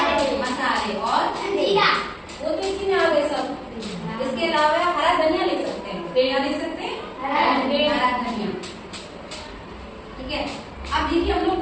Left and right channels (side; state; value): both; identical; correlation 1.00